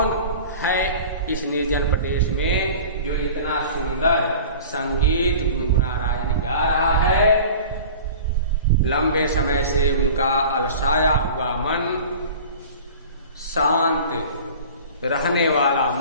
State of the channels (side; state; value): both; inverted; correlation -0.40